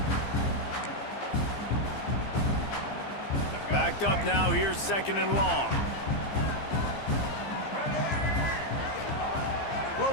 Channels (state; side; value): late; right; 15 ms